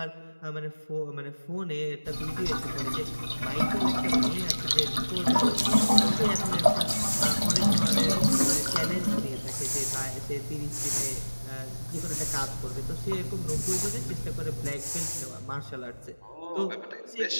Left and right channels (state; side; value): inverted; both; correlation -1.00